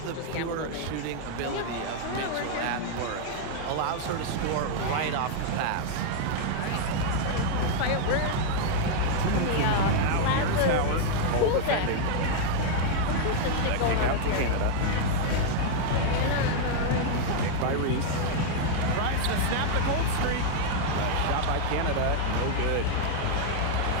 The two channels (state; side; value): different; both; correlation 0.00